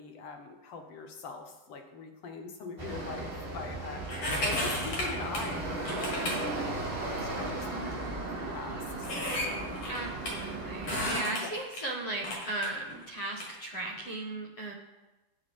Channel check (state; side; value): late; right; 9.3 ms